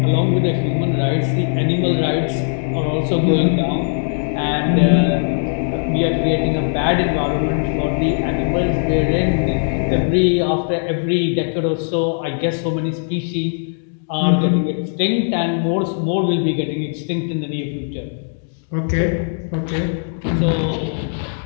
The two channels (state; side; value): silent; right; digital silence